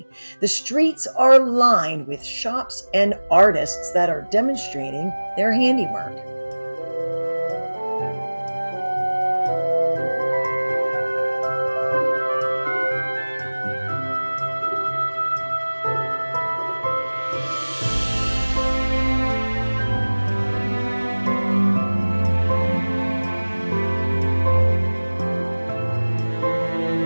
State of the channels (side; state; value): both; inverted; correlation -1.00